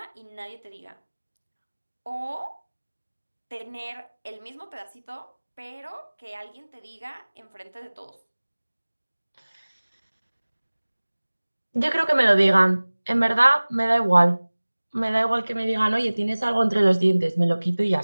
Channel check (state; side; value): inverted; both; correlation -1.00